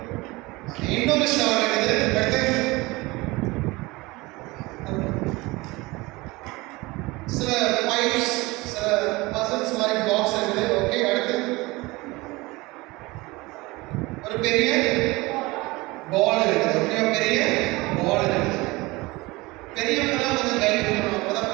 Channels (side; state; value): left; quieter; 22.4 dB